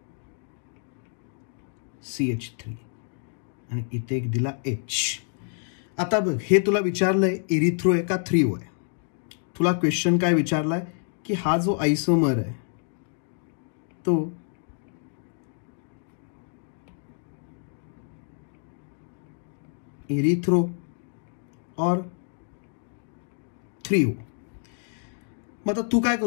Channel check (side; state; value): right; silent; 59 dB below the other